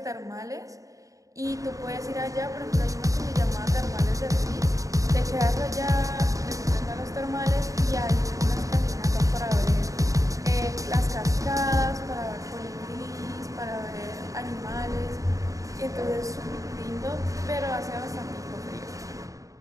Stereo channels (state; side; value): late; left; 0.16 ms